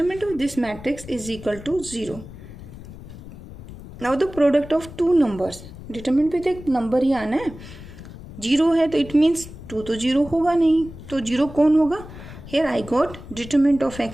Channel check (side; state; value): left; noise; rumble, 15 dB below the sound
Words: of this matrix is equal to 0। Now the product of 2 numbers, determinant पे तो एक नंबर ही आना है, 0 है तो इट मीन्स 2 तो 0 होगा नहीं, तो 0 कौन होगा, here I got determinant of